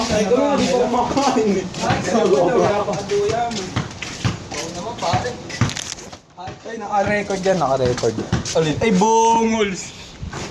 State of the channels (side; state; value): both; identical; correlation 1.00